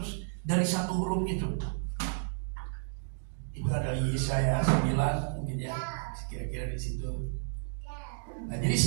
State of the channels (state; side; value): silent; left; digital silence